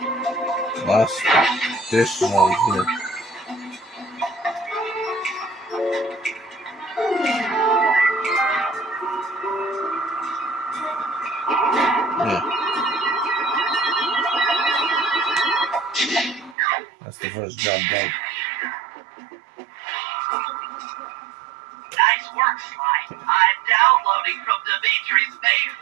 last dish is on here. Yeah. That's the first job done. Nice work, Sly. I'm downloading from Dimitri's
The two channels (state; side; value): drops out; left; at 16.6 s